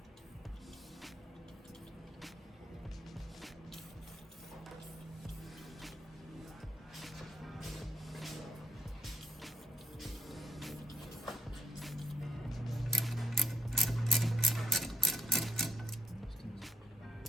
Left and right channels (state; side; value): normal; both; correlation 0.78